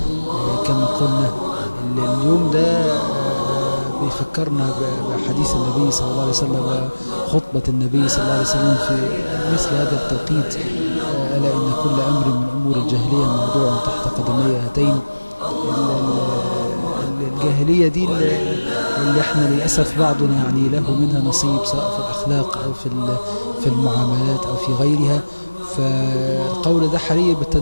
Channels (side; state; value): both; inverted; correlation -1.00